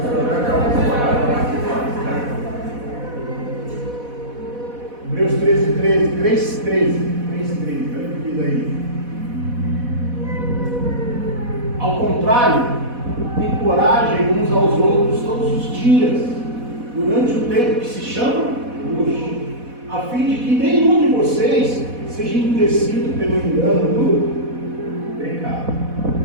agradável. Hebreus 13, 13, 3, 13. 3, 13. Olha o que diz aí. Ao contrário, encorajem uns aos outros todos os dias, durante o tempo que se chama hoje, a fim de que nenhum de vocês seja endurecido pelo engano do pecado.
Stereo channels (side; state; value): left; late; 4.1 ms